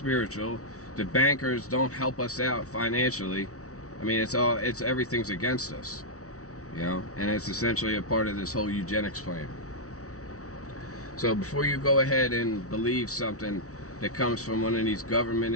The bankers don't help us out financially. I mean, everything's against us. You know, and it's essentially a part of this whole eugenics plan. So before you go ahead and believe something that comes from one of these government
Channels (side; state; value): right; late; 0.65 ms